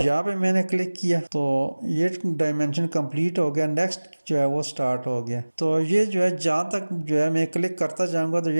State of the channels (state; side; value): inverted; both; correlation -1.00